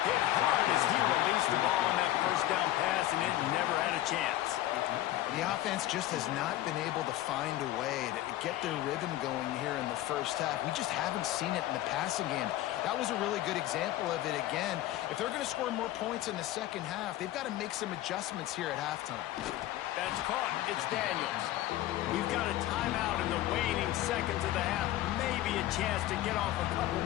Hit hard as he released the ball on that 1st down pass, and it never had a chance. The offense just has not been able to find a way to get their rhythm going here in the 1st half. We just haven't seen it in the passing game. That was a really good example of it again. If they're going to score more points in the 2nd half, they've got to make some adjustments here at halftime. That's caught. It's Daniels. We've got a timeout in the waning seconds of the half. Maybe a chance to get off a couple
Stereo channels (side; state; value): right; quieter; 14.8 dB